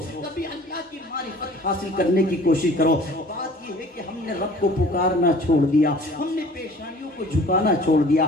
کبھی اللہ کی معرفت حاصل کرنے کی کوشش کرو. بات یہ ہے کہ ہم نے رب کو پکارنا چھوڑ دیا, ہم نے پیشانیوں کو جھکانا چھوڑ دیا.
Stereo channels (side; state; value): both; normal; correlation 0.49